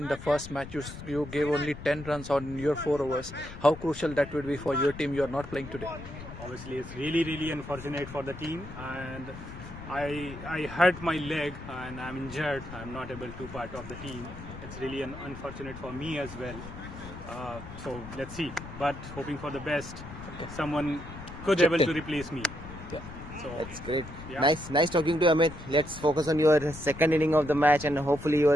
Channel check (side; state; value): left; noise; rumble, 13 dB below the sound